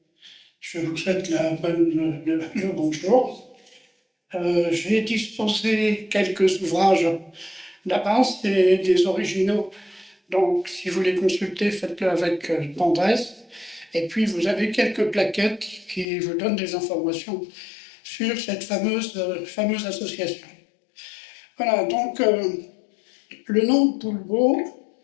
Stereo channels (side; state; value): right; drops out; at 16.1 s